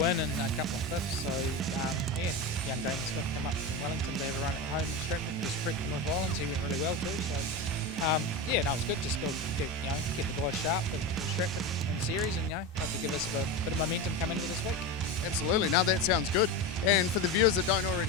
and a couple of fifths. So yeah, young Damon Smith come up from Wellington to have a run at home in Stratford. Just prepped for North Islands. He went really well too. So yeah, no, it was good. Just go, keep the guys sharp in Stratford in the series, and hopefully give us a bit of momentum coming into this week. Absolutely. Now that sounds good. And for the viewers that don't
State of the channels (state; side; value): normal; both; correlation 0.21